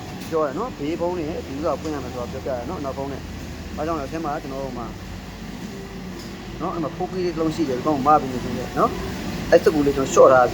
ပြောရနော်ဘေးဘုံနဲ့ဒီလိုပွင့်ရမယ်ဆိုတော့ပြောပြရနော်နောက်ဘုံနဲ့ဘာကြောင့်လဲအထက်မှာကျွန်တော်တို့မှာနော်အဲ့မှာဖိုးကီးလေးတစ်လုံးရှိတယ်ဒီကောင်မပြီးနေတယ်နော်အဲ့စကူလေးကျွန်တော် short ထားတာဖ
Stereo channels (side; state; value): both; identical; correlation 1.00